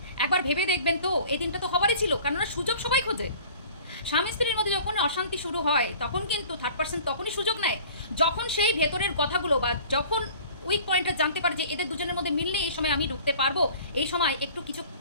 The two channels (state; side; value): inverted; both; correlation -0.47